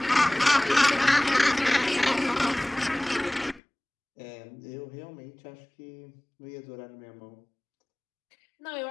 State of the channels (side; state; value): right; drops out; at 3.6 s